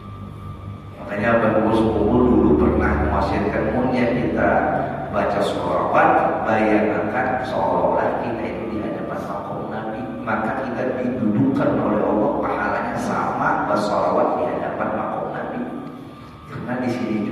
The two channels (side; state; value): both; identical; correlation 1.00